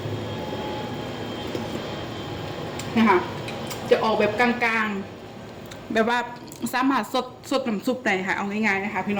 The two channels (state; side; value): identical; both; correlation 1.00